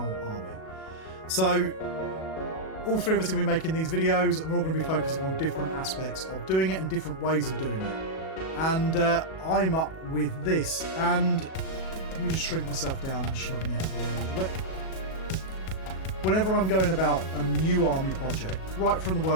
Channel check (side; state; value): right; late; 37 ms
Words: army. So all three of us are going to be making these videos and we're all going to be focusing on different aspects of doing it and different ways of doing it. And I'm up with this, and let me just shrink myself down and shove me out of the way a little bit. Whenever I'm going about a new army project, right from the